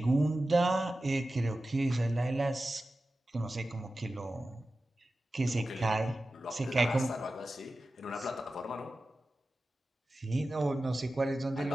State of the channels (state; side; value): normal; both; correlation 0.94